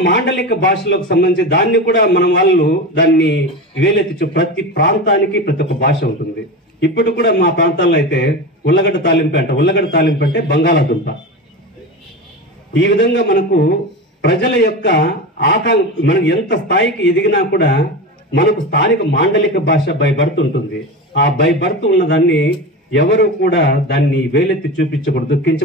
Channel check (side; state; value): both; normal; correlation 0.25